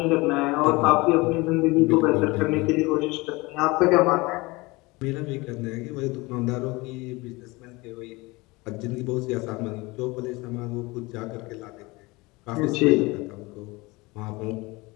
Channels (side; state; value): right; quieter; 23.4 dB